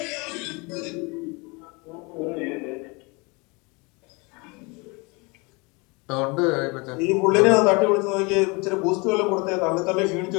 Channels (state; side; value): quieter; right; 28.4 dB